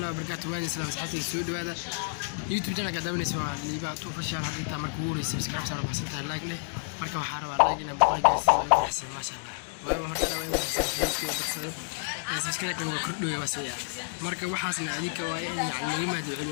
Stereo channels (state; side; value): silent; right; digital silence